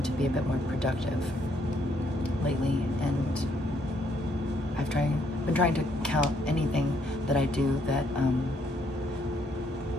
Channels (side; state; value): both; normal; correlation 0.71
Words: to be a bit more productive lately, and I've been trying to count anything that I do that,